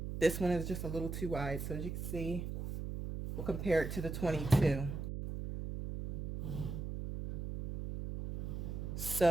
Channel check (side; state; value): right; noise; hum, 5 dB below the sound